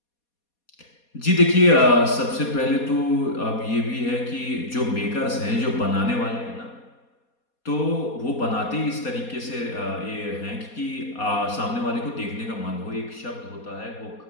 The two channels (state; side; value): late; right; 4.2 ms